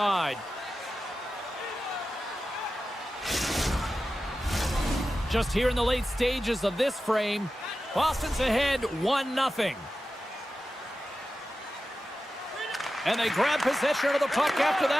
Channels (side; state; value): both; normal; correlation 0.93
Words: Just here in the late stages of this frame, Boston's ahead 1-0. And they grab possession of the puck after